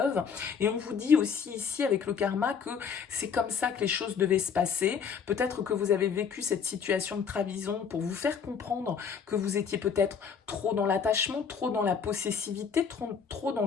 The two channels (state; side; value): quieter; right; 6.6 dB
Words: Et on vous dit aussi ici, avec le karma, que c'est comme ça que les choses devaient se passer. Peut-être que vous avez vécu cette situation de trahison pour vous faire comprendre que vous étiez peut-être trop dans l'attachement, trop dans la possessivité, trop dans